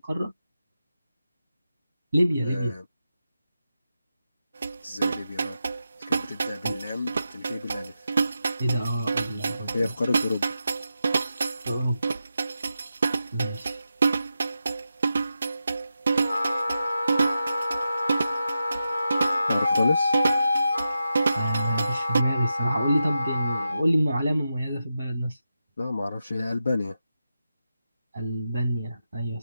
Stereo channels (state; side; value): inverted; both; correlation -0.89